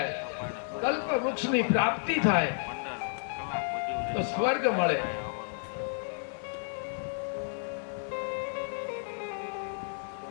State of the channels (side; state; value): right; silent; digital silence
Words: કલ્પ વૃક્ષની પ્રાપ્તિ થાય તો સ્વર્ગ મળે.